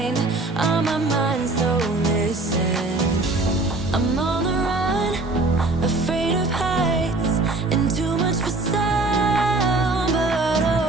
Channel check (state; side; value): quieter; left; 3.1 dB